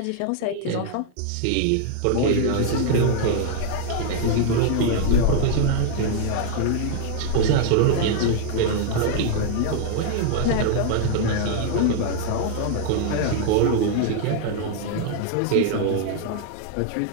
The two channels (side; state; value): both; different; correlation 0.00